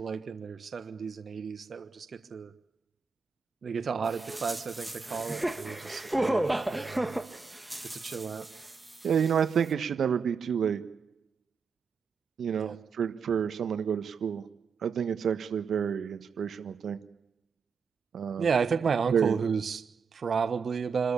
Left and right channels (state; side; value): quieter; left; 5.6 dB